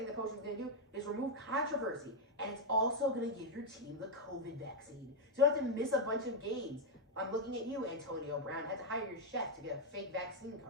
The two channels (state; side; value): normal; both; correlation 0.01